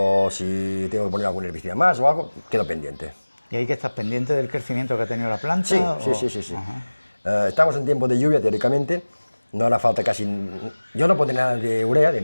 si tengo que poner algún herbicida más o algo, quedo pendiente. ¿Y ahí que estás pendiente del crecimiento que ha tenido la planta? Sí, o- sí. Ajá. Estamos en tiempo de lluvia, teóricamente, no hará falta casi... Yo no pondré nada de urea, de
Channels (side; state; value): both; inverted; correlation -1.00